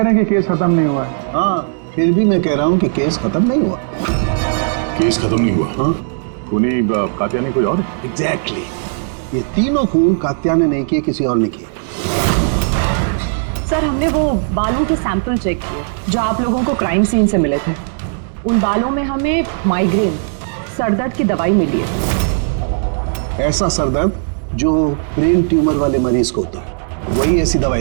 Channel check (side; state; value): left; silent; digital silence